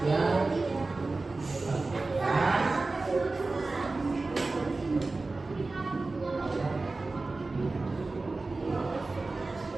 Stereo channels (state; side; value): quieter; left; 3.5 dB